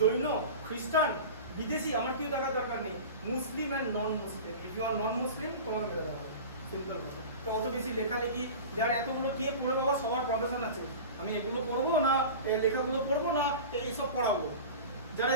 খ্রিস্টান, বিদেশি, আমার কেউ দেখার দরকার নেই। Muslim and non Muslim, if you are non Muslim তোমাকে মেরে দেওয়া হবে। সিম্পল কথা। তো অত বেশি লেখালেখি যার এতগুলো কে পড়ে, বাবা সবার প্রফেশন আছে। আমি এগুলো পড়বো না, লেখাগুলো পড়বো না, এইসব পড়াবো। যারা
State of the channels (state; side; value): inverted; both; correlation -0.33